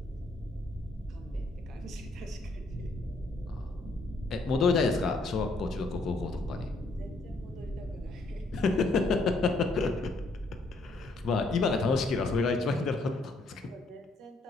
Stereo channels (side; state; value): right; quieter; 3.1 dB